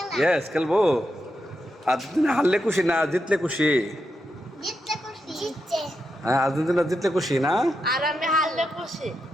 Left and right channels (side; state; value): both; normal; correlation 0.85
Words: ইয়েস খেলবো আর্জেন্টিনা হারলে খুশি না জিতলে খুশি জিতছে হ্যাঁ আর্জেন্টিনা জিতলে খুশি না আর আমি হারলে খুশি